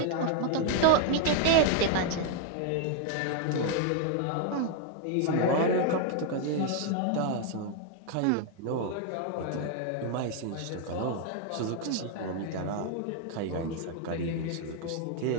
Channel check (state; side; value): different; both; correlation 0.00